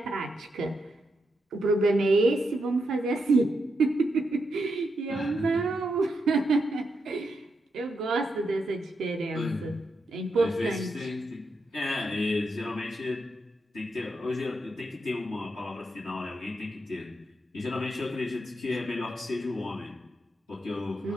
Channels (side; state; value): both; normal; correlation 0.83